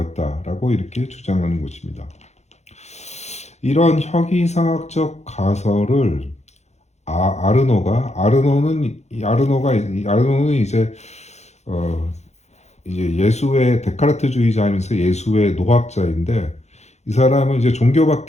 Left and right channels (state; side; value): late; right; 0.33 ms